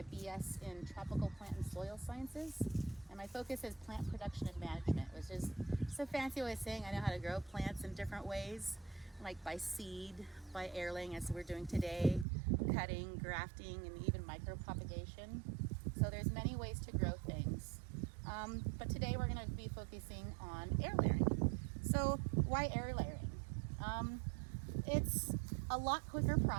BS in Tropical Plant and Soil Sciences. And my focus is plant production and management, which is just a fancy way of saying I know how to grow plants in different ways, like by seed, by air laying, as we're doing today, cutting, grafting, and even micropropagation. So there's many ways to grow things. But today we're going to be focusing on air layering. So why air layering? It's a lot quicker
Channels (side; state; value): left; drops out; at 12.2 s